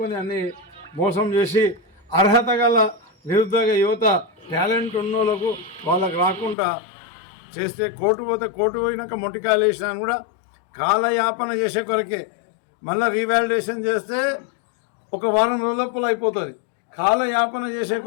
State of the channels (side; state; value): right; drops out; at 6.6 s